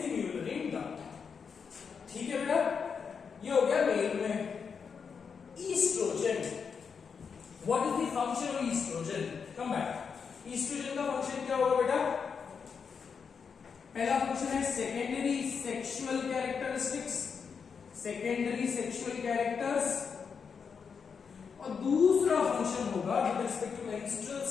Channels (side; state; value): right; quieter; 6.1 dB